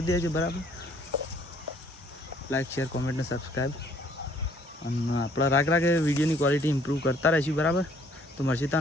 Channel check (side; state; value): both; normal; correlation 0.61